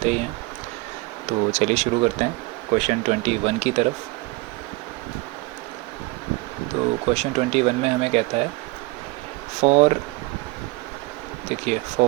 ही हैं। तो चलिए शुरू करते हैं क्वेश्चन 21 की तरफ। तो क्वेश्चन 21 में हमें कहता है फॉर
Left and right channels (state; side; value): quieter; left; 23.6 dB